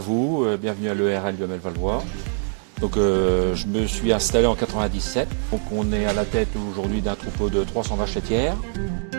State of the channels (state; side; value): silent; left; 57 dB below the other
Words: bienvenue à l'ERL du ML Valois. Donc je me suis installé en 97. Donc on est à la tête aujourd'hui d'un troupeau de 300 vaches laitières.